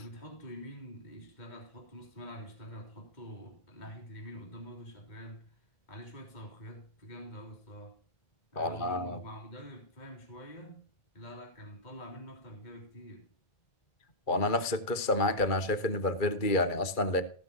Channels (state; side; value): late; right; 2.3 ms